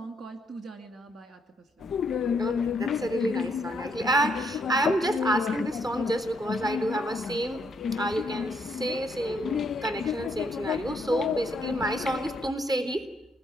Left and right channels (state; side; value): normal; both; correlation 0.73